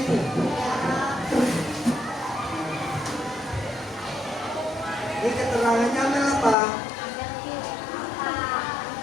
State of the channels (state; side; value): drops out; right; at 6.6 s